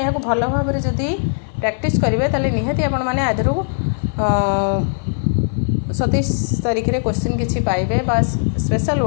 यहाँ भल भाव में जदि प्रैक्टिस करेंगे ताले निहाती आपण मैंने आधर 27 तारीख रे क्वेश्चन किछि पाइबे बस स्पेशल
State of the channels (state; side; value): silent; right; 57 dB below the other